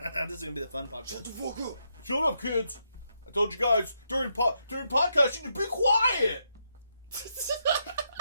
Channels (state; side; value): inverted; both; correlation -0.80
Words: This is gonna be the fun podcast. Shut the fuck up. Shut up, kids. I told you guys during podcast you need to be quiet.